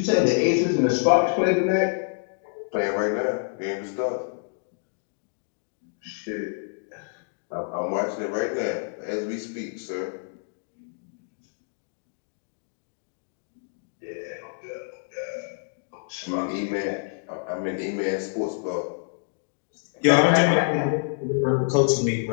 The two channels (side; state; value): right; silent; digital silence